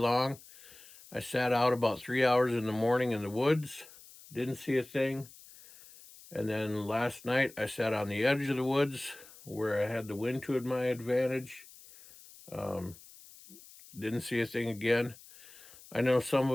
I sat out about 3 hours in the morning in the woods, didn't see a thing. And then last night I sat on the edge of the woods where I had the wind to my advantage. Didn't see a thing again. I know some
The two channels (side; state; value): left; noise; hiss, 21 dB below the sound